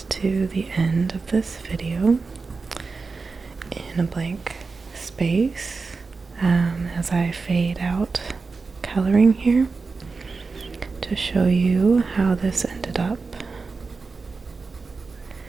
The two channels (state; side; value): quieter; left; 4.3 dB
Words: to the end of this video in a blank space as I fade out coloring here to show you how this ended up.